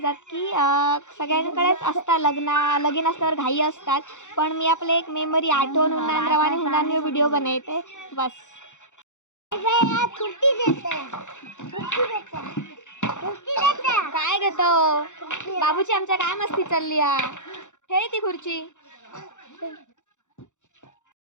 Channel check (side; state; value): right; late; 0.85 ms